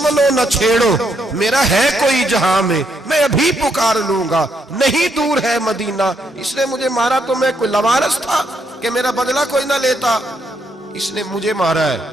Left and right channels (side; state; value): both; normal; correlation 0.76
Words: نہ چھیڑو، میرا ہے کوئی جہاں میں ابھی پکار لوں گا، نہیں دور ہے مدینہ. اس نے مجھے مارا تو میں کوئی لاوارث تھا کہ میرا بدلہ کوئی نہ لیتا. اس نے مجھے مارا ہے